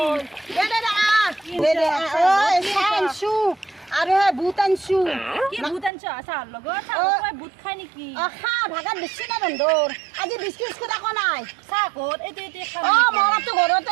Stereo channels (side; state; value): left; drops out; at 5.9 s